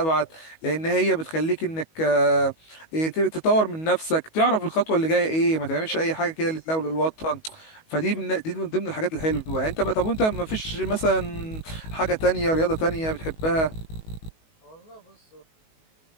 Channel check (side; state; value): right; late; 19 ms